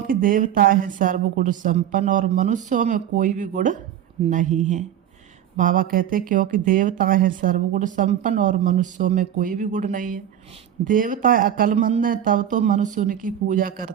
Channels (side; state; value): left; quieter; 10.4 dB